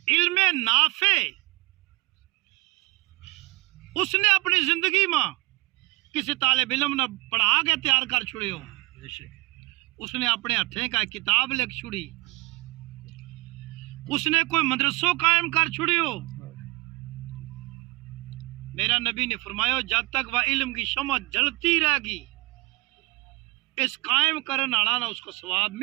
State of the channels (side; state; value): left; quieter; 23.8 dB